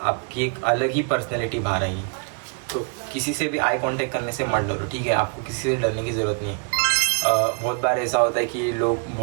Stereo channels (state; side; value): quieter; left; 38.9 dB